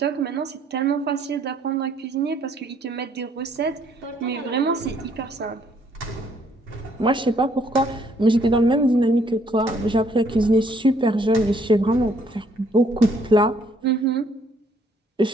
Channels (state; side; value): normal; both; correlation 0.66